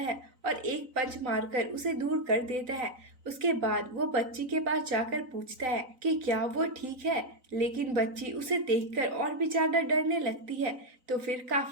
है और एक पंच मारकर उसे दूर कर देता है। उसके बाद वो बच्ची के पास जाकर पूछता है कि क्या वो ठीक है, लेकिन बच्ची उसे देखकर और भी ज्यादा डरने लगती है। तो फिर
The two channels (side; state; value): left; late; 3.9 ms